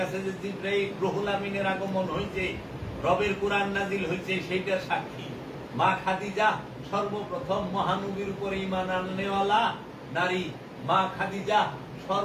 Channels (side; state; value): both; identical; correlation 1.00